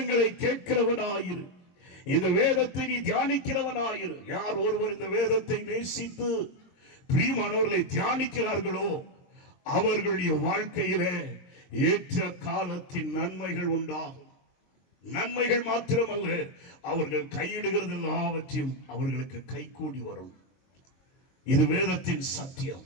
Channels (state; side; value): late; right; 22 ms